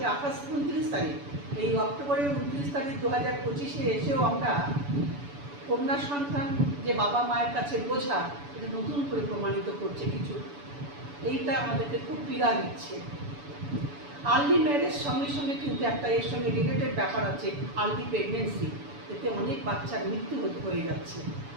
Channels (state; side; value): late; left; 7.0 ms